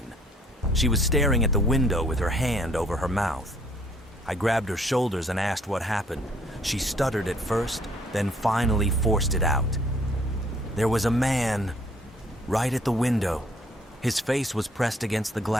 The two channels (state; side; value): normal; both; correlation 0.62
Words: She was staring at the window with her hand over her mouth. I grabbed her shoulders and asked what happened. She stuttered at first, then finally forced it out. There was a man right at the window. His face was pressed against the